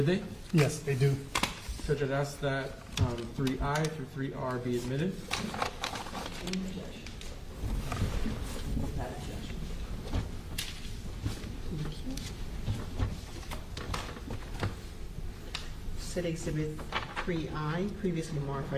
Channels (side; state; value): both; identical; correlation 1.00